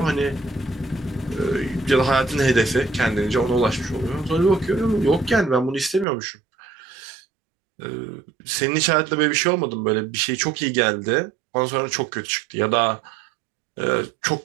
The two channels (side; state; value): left; drops out; at 6.1 s